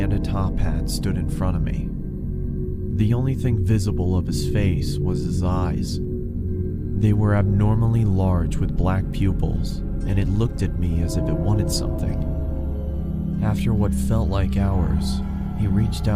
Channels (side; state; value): both; identical; correlation 1.00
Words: a top hat stood in front of me. The only thing visible of his face was his eyes. They were abnormally large with black pupils, and it looked at me as if it wanted something. After what felt like hours, he reached